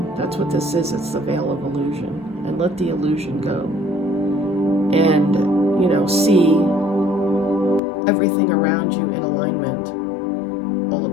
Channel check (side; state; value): right; drops out; at 7.8 s